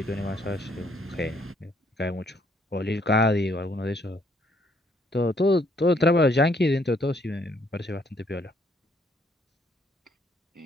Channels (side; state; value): both; normal; correlation 0.68